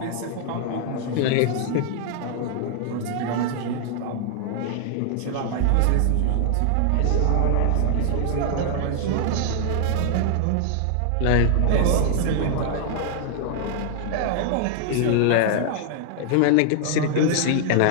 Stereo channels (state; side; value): different; both; correlation 0.00